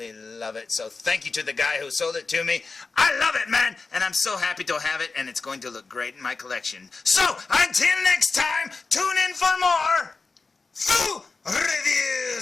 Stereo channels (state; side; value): quieter; right; 4.2 dB